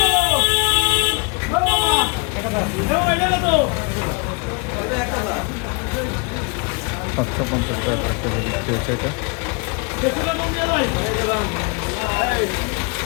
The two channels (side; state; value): right; quieter; 32.3 dB